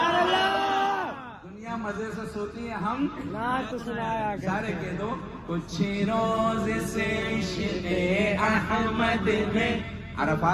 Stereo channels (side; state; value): both; identical; correlation 1.00